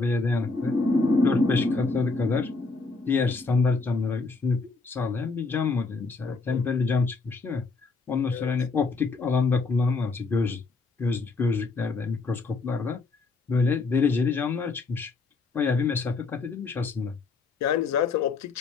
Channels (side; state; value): right; quieter; 4.0 dB